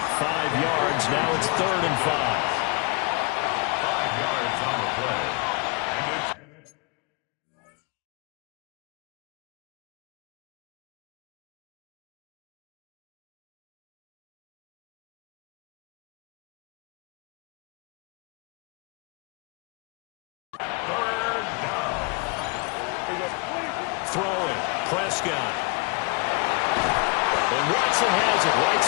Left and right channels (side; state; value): right; quieter; 30.1 dB